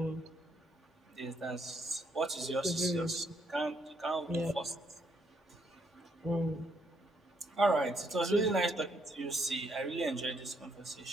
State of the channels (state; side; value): normal; both; correlation 0.73